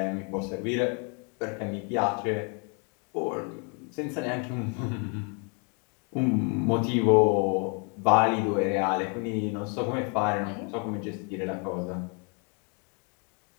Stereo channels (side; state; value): right; quieter; 36.9 dB